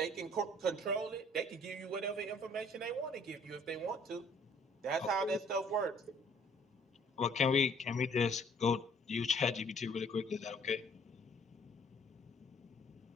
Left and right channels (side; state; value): both; normal; correlation 0.59